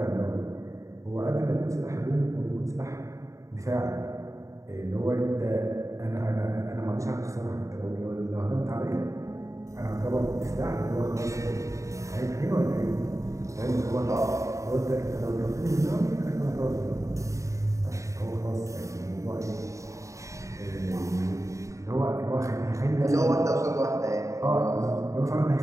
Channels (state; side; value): late; left; 0.15 ms